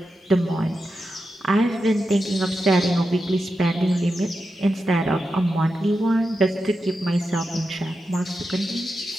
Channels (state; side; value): normal; both; correlation 0.89